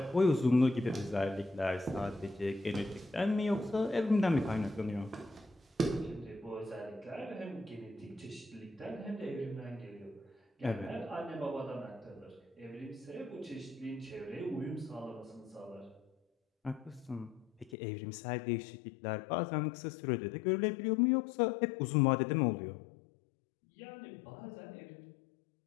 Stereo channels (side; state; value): right; drops out; at 17.8 s